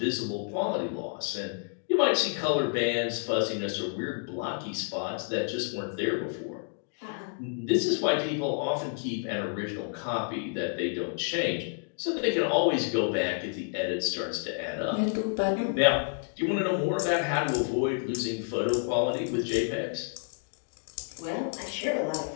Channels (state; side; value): silent; right; 58 dB below the other